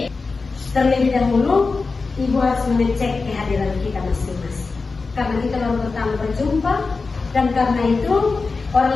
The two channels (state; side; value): quieter; right; 4.2 dB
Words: Terlebih dahulu, Ibu harus mengecek kehadiran kita masing-masing. Karena kita baru pertama berjumpa dan karena itu